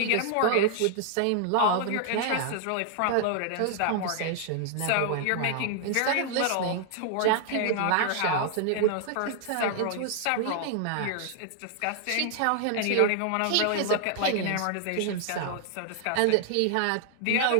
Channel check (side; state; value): both; different; correlation 0.00